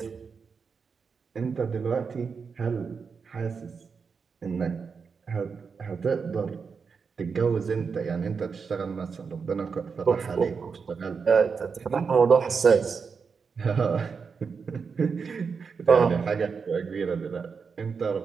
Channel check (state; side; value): quieter; left; 5.6 dB